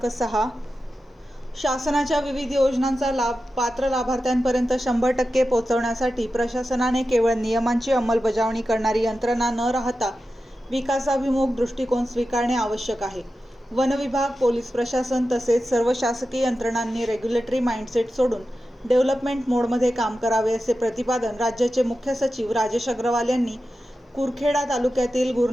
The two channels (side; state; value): both; normal; correlation 0.92